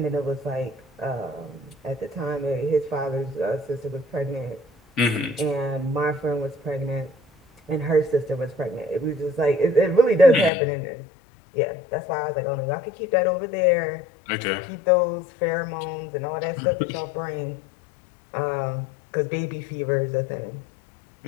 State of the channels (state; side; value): drops out; right; at 10.5 s